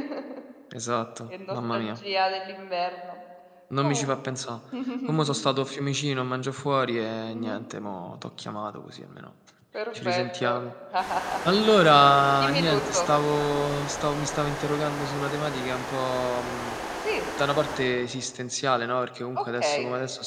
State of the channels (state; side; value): identical; both; correlation 1.00